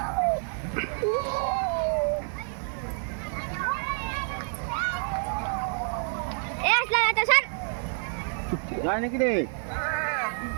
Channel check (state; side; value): silent; left; 59 dB below the other